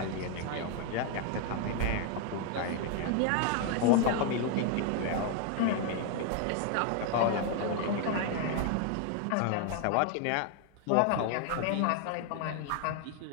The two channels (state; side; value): different; both; correlation 0.00